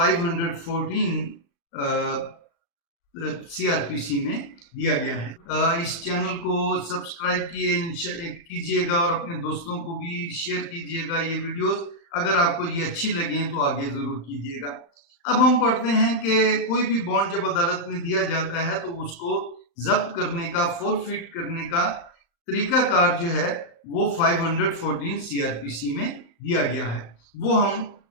CRPC में दिया गया है। इस चैनल को सब्सक्राइब कीजिएगा और अपने दोस्तों को भी शेयर कीजिएगा ये वीडियोस। अगर आपको ये अच्छी लगे तो आगे ज़रूर कीजिएगा। अब हम पढ़ते हैं कि कोई भी बॉन्ड जब अदालत में दिया जाता है तो उसको जब्त करने का, फोरफिट करने का तरीकाकार जो है वो 514 CRPC में दिया गया है। वो हम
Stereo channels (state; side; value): late; right; 35 ms